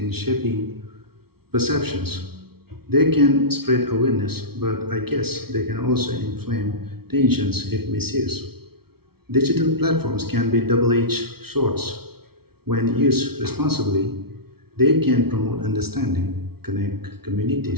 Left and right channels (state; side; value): late; left; 0.95 ms